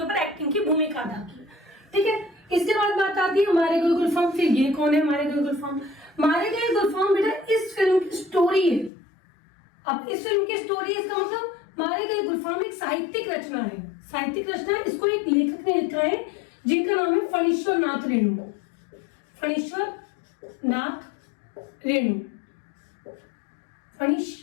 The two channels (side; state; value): right; drops out; at 8.9 s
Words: ऊपर एक्टिंग की भूमिका अदा की। ठीक है, इसके बाद बात आती है मारे गए गुलफाम। फिर ये कौन है मारे गए गुलफाम? मारे गए गुलफाम बेटा इस फिल्म की स्टोरी है। अब इस फिल्म की स्टोरी, इसका मतलब मारे गए गुलफाम एक साहित्यिक रचना है। साहित्यिक रचना है, इसको एक लेखक ने लिखा है जिनका नाम है फणीश्वर नाथ रेणु। फणीश्वर नाथ रेणु,